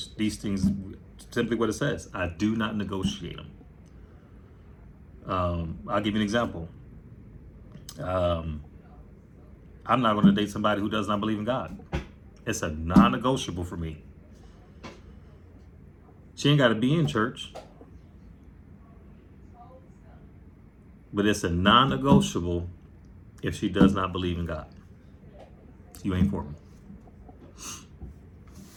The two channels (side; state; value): both; identical; correlation 1.00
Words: these things, simply what it says, I do not negotiate them. I'll give you an example. I'm not going to date somebody who does not believe in God. It's a non-negotiable for me. She ain't got to be in church, but it's a non-negotiable if she does not believe in God. You ain't for me.